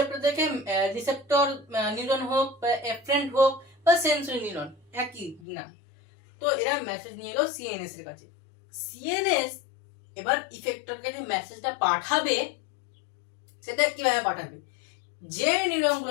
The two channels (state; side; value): drops out; right; at 5.4 s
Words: থেকে রিসেপ্টর নিউরন হোক বা এফারেন্ট হোক বা সেন্সরি নিউরন একই না, তো এরা মেসেজ নিয়ে এলো সিএনএস এর কাছে। সিএনএস এবার ইফেক্টরকে যে মেসেজটা পাঠাবে সেটা কিভাবে পাঠাবে, যে নিউরন